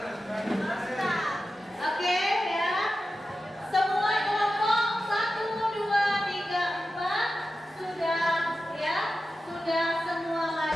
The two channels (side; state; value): both; normal; correlation 0.92